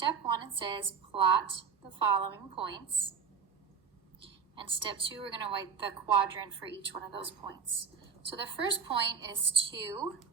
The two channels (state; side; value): quieter; left; 6.1 dB